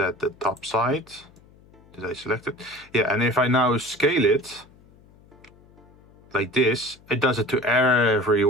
the top side, did I select it? Yeah, and if I now scale it like this, it does it to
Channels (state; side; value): noise; left; hum, 27 dB below the sound